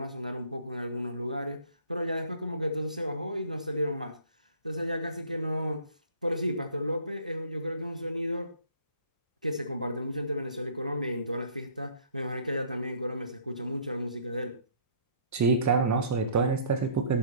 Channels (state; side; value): inverted; both; correlation -0.54